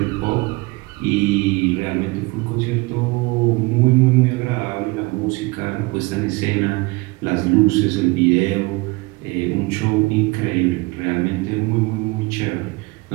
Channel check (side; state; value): left; quieter; 24.6 dB